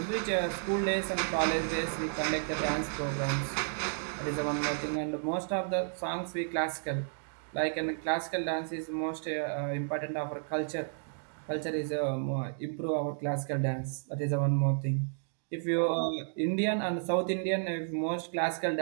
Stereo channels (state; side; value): silent; left; digital silence